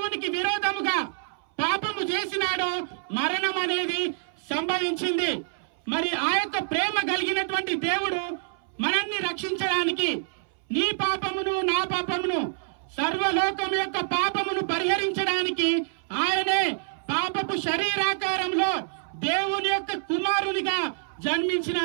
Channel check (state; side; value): silent; left; 60 dB below the other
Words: విరోధముగా పాపము చేసినాడో మరణం అనేది సంభవించింది. మరి ఆ యొక్క ప్రేమ కలిగినటువంటి దేవుడు మనల్ని రక్షించడానికి నీ పాపమును నా పాపమును, సర్వలోకం యొక్క పాపమును పరిహరించడానికి ఆయనే పాపపు శరీరాకారంలో దేవుని యొక్క కుమారునిగా